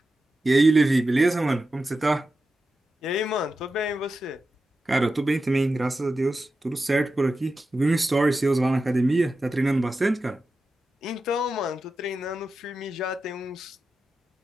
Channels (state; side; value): normal; both; correlation 0.91